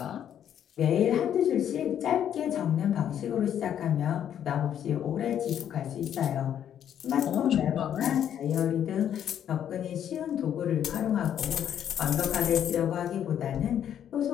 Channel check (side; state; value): right; quieter; 9.7 dB